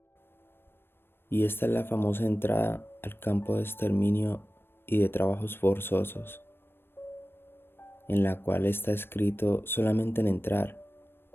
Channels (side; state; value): right; late; 0.11 ms